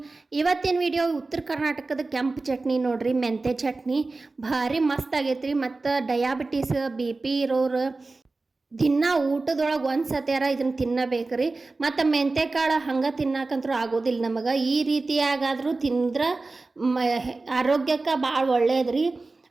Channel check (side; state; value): left; quieter; 3.5 dB